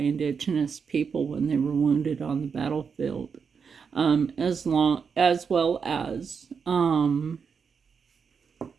people when they were wounded on the battlefield, as well as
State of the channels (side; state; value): left; quieter; 6.1 dB